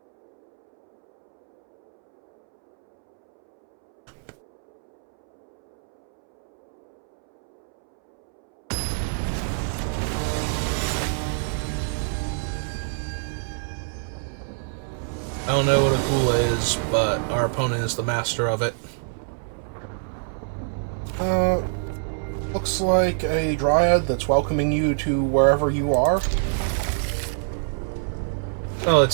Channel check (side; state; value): left; silent; 62 dB below the other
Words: don't know what a Kula is, but our opponent is the master of it. Looks like a dryad that's welcoming you to wherever you are. Oh,